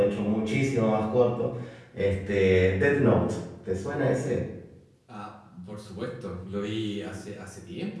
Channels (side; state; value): both; identical; correlation 1.00